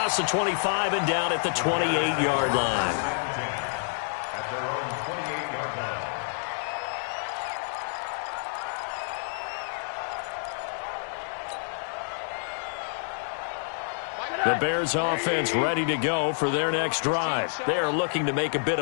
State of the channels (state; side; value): silent; right; digital silence